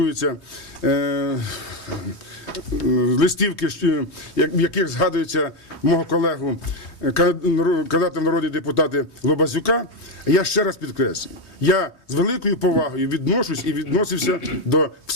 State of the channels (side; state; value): right; late; 3.2 ms